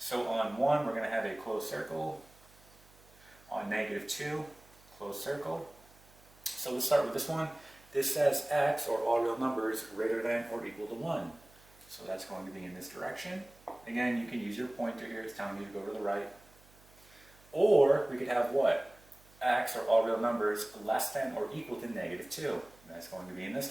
on 1, we're going to have a closed circle. On negative 2, closed circle. So let's start with this one. This says x, or all real numbers, greater than or equal to 1. So that's going to be in this direction. Again, you can use your pointer here. It's telling you to go to the right. Or we could have what? X, or all real numbers, less than or equal to negative 2. And that's going to be in this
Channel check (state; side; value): noise; right; hum, 27 dB below the sound